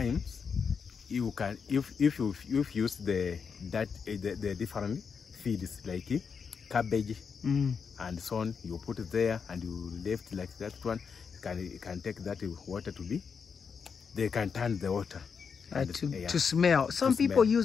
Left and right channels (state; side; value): quieter; right; 6.1 dB